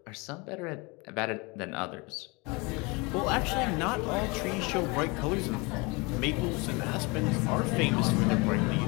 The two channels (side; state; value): right; quieter; 27.4 dB